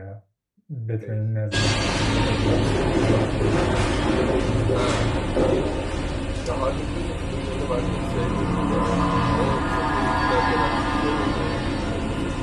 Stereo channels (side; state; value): both; identical; correlation 1.00